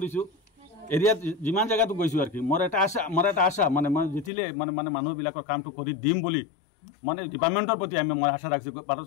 এৰিয়াত যিমান জায়গাতো গৈছোঁ আৰ কি মোৰ এটা আশা মানে মই জিতিলে মানে মানে মানুহবিলাকৰ কামটো কৰি দিম বুলি মানে ডিপার্টমেন্টের প্রতি আমি মই আশা রাখছি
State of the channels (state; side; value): drops out; right; at 4.3 s